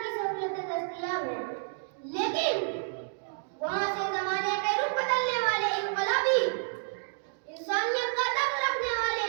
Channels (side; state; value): left; silent; digital silence